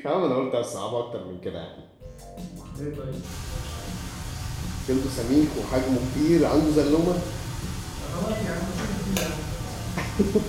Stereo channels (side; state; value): both; identical; correlation 1.00